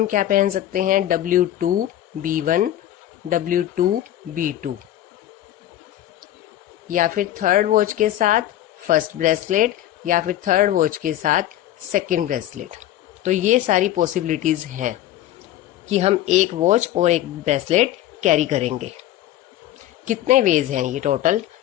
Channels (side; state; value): right; quieter; 13.0 dB